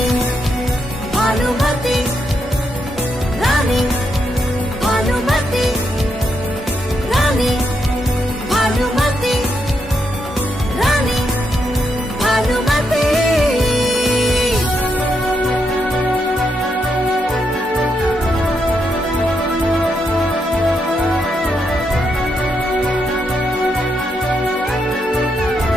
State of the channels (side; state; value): both; normal; correlation 0.80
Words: भानुमति, रानी भानुमति, रानी भानुमति, रानी भानुमति।